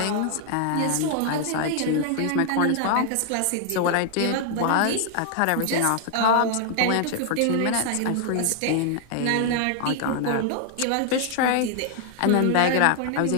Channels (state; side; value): different; both; correlation 0.00